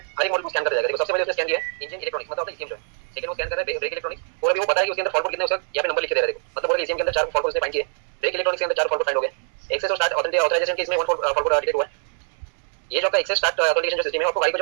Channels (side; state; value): left; silent; digital silence